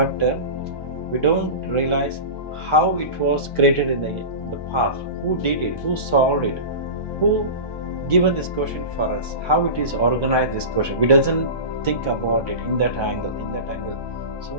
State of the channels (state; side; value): late; right; 1.2 ms